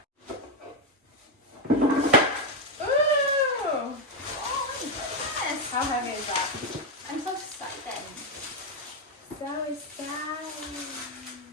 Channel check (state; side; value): normal; both; correlation 0.05